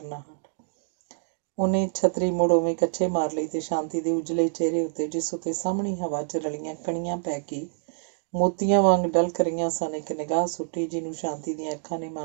ਉਹਨੇ ਛਤਰੀ ਮੁੜ ਉਵੇਂ ਕੱਛੇ ਮਾਰ ਲਈ ਤੇ ਸ਼ਾਂਤੀ ਦੇ ਉਜਲੇ ਚਿਹਰੇ ਉੱਤੇ, ਜਿਸ ਉੱਤੇ ਸਾਹਮਣੀ ਹਵਾ 'ਚ ਰਲੀਆਂ ਕਣੀਆਂ ਪੈ ਕੇ ਮੋਤੀਆਂ ਵਾਂਗ ਡਲਕ ਰਹੀਆਂ ਸਨ, ਇੱਕ ਨਿਗਾਹ ਸੁੱਟੀ, ਜਿਹਨੂੰ ਸ਼ਾਂਤੀ ਦੀਆਂ ਅੱਖਾਂ ਨੇ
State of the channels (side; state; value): left; silent; digital silence